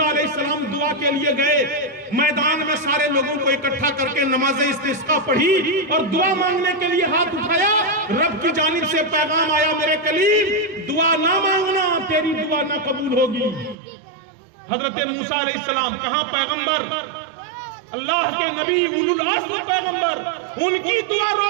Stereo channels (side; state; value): left; drops out; at 13.8 s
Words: علیہ السلام دعا کے لیے گئے، میدان میں سارے لوگوں کو اکٹھا کر کے نماز استسقاء پڑھی اور دعا مانگنے کے لیے ہاتھ اٹھایا۔ رب کی جانب سے پیغام آیا، میرے کلیم دعا نہ مانگنا، تیری دعا نہ قبول ہوگی۔ حضرت موسیٰ علیہ السلام کہاں پیغمبر، اللہ کے نبی، اولو العزم پیغمبر، ان کی دعا